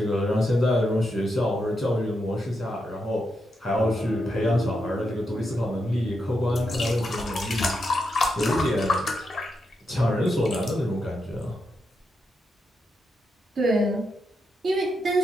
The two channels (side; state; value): both; normal; correlation 0.84